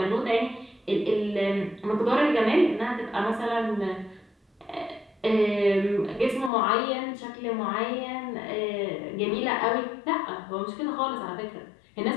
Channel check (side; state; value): right; drops out; at 6.5 s